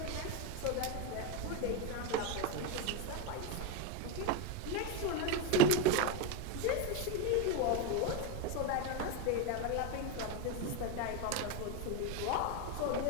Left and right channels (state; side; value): different; both; correlation 0.03